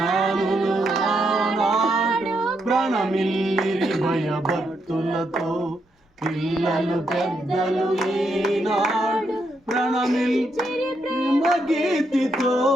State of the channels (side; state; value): both; normal; correlation 0.79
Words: ఆనాడు ప్రణమిల్లిరి భయభక్తులతో పిల్లలు పెద్దలు ఈనాడు ప్రణమిల్లిరి ప్రేమ గీతితో